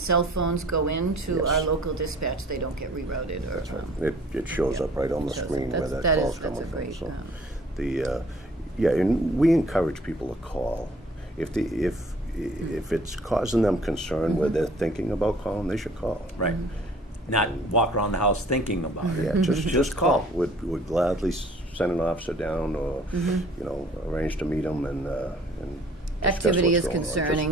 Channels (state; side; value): normal; both; correlation 0.54